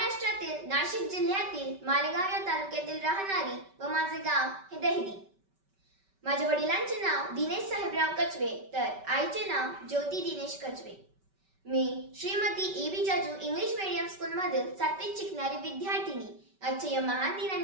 नाशिक जिल्ह्यातील मालेगाव या तालुक्यातील राहणारी व माझे गाव हे दहिदी. माझ्या वडिलांचे नाव दिनेश साहेबराव कचवे तर आईचे नाव ज्योती दिनेश कचवे. मी Shrimati A B. Jaju English medium school मधील 7वीत शिकणारी विद्यार्थिनी. आजच्या या महान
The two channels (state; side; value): late; left; 5.2 ms